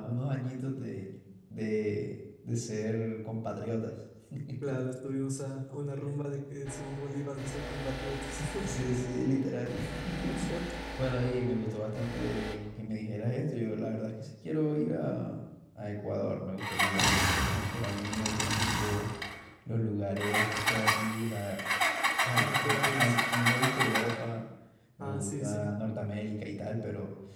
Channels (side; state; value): both; identical; correlation 1.00